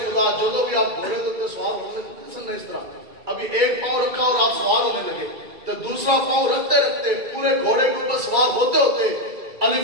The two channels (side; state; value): left; late; 2.3 ms